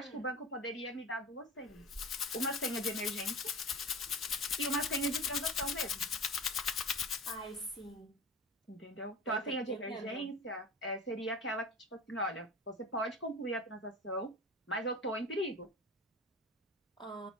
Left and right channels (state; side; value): normal; both; correlation 0.33